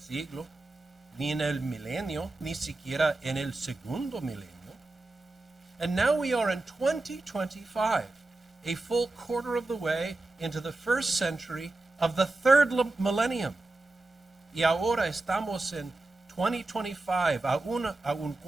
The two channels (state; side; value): quieter; left; 3.0 dB